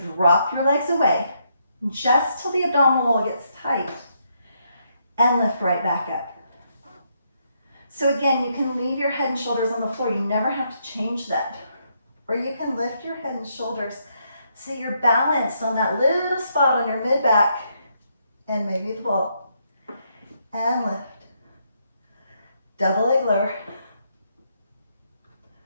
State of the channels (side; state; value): both; inverted; correlation -0.76